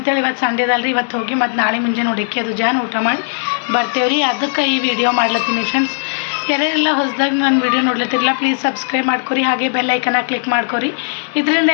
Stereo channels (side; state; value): right; silent; digital silence